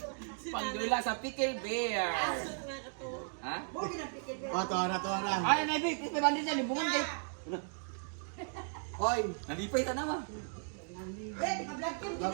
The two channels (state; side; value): silent; left; 54 dB below the other